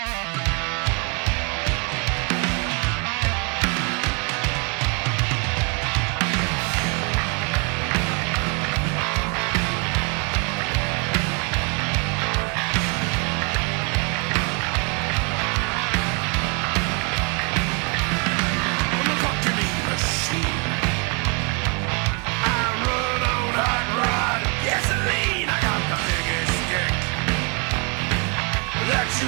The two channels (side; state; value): left; quieter; 34.7 dB